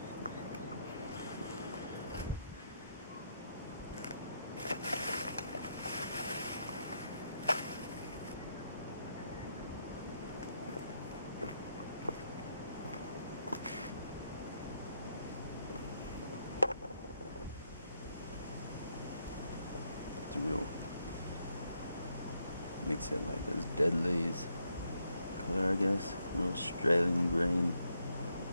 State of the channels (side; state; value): both; inverted; correlation -0.78